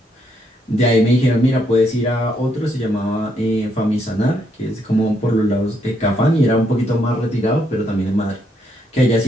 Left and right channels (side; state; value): both; normal; correlation 0.75